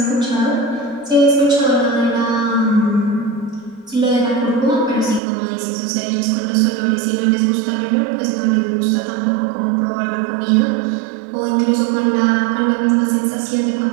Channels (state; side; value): drops out; left; at 5.2 s